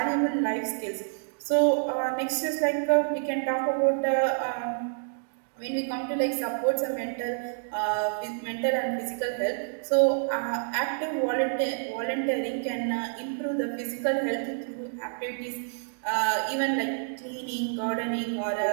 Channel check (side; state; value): left; silent; digital silence